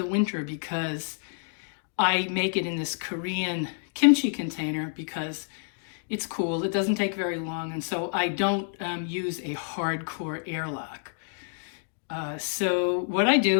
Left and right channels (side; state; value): right; silent; digital silence